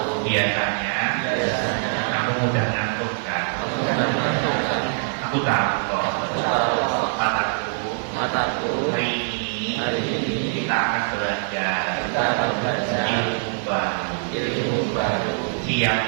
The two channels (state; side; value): silent; left; 63 dB below the other